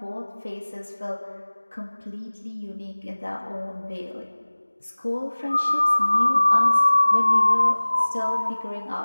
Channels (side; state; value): both; inverted; correlation -1.00